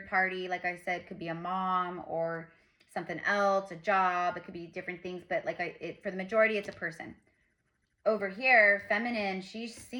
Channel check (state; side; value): identical; both; correlation 1.00